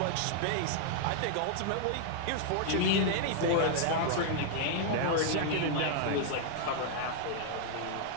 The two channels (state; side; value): different; both; correlation -0.01